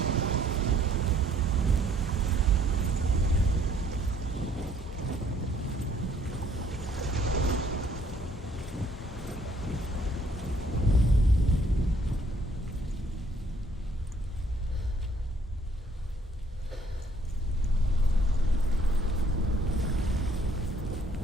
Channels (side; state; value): both; normal; correlation 0.63